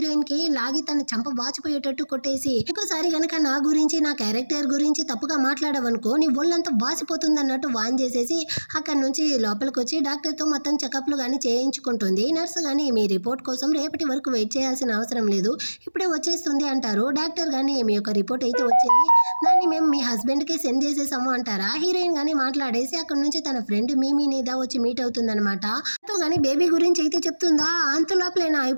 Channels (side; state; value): both; inverted; correlation -1.00